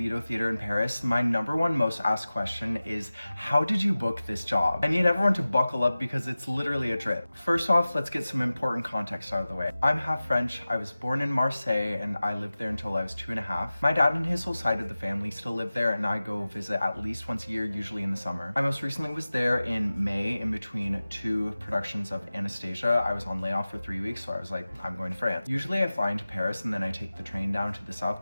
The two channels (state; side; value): inverted; both; correlation -0.97